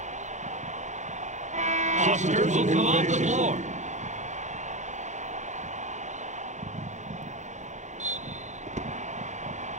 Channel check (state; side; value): late; left; 0.35 ms